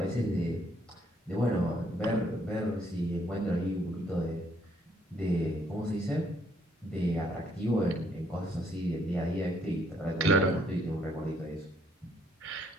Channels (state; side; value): normal; both; correlation 0.68